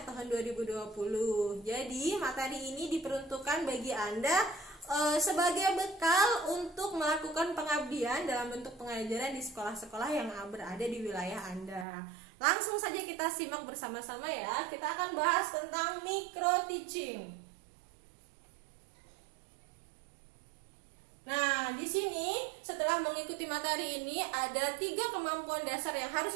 tahun 2020. Jadi materi ini diperuntukkan bagi Anda sebagai bekal untuk melakukan pengabdian dalam bentuk pengajaran di sekolah-sekolah yang berada di wilayah Anda. Langsung saja kita simak bersama-sama ya. Kita akan bahas tentang micro teaching. Nah, di sini setelah mengikuti materi ini ada 3 kemampuan dasar yang harus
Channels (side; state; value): left; drops out; at 11.9 s